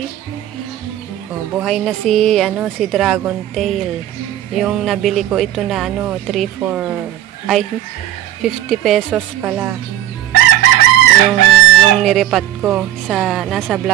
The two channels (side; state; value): left; quieter; 13.1 dB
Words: buhay na si dragon tail. Yung nabili ko ito na 50 pesos pala. Yung niripat ko nasa